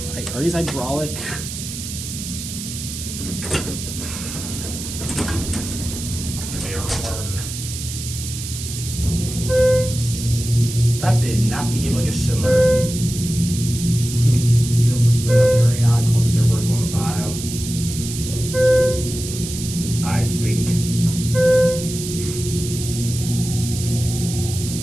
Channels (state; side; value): noise; right; hiss, 8 dB below the sound